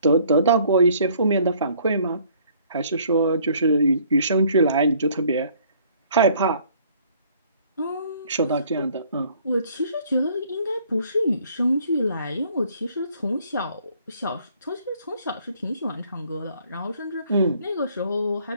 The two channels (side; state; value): both; inverted; correlation -0.60